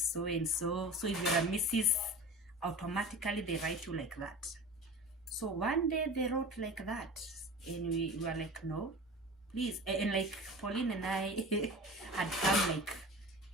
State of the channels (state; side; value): normal; both; correlation 0.35